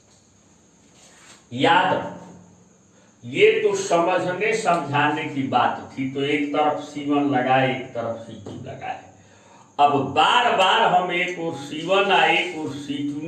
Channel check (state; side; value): identical; both; correlation 1.00